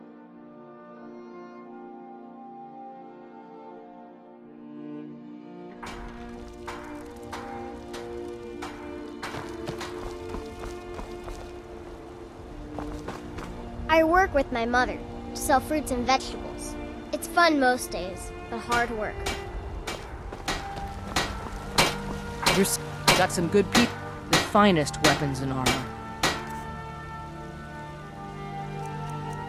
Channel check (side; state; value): both; identical; correlation 1.00